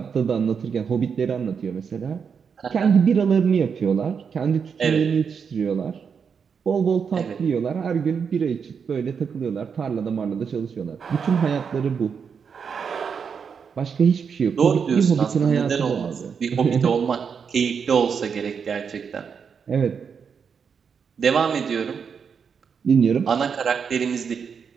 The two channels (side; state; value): left; quieter; 6.4 dB